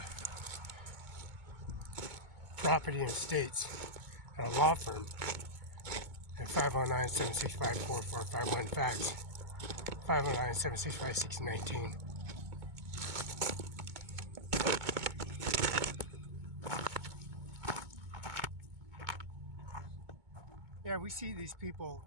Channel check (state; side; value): late; left; 2.2 ms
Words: property and estates at a law firm at 509-765-4451 fax 509-765-1619. Yeah, we see these people